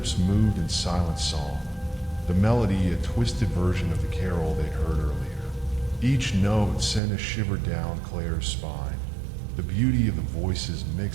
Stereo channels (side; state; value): left; drops out; at 7.0 s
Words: moved in silent song, the melody a twisted version of the carol they'd heard earlier. Each note sent a shiver down Claire's spine, the beauty of the voices